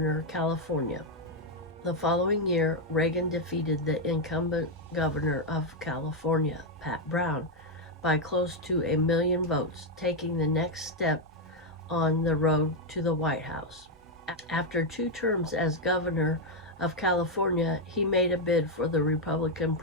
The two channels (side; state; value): both; normal; correlation 0.02